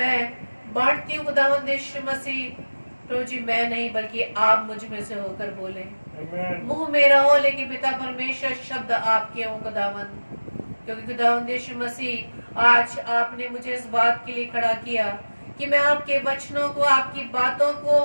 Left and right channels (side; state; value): both; inverted; correlation -1.00